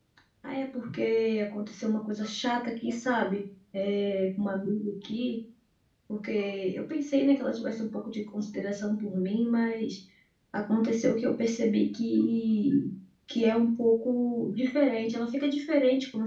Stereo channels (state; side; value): identical; both; correlation 1.00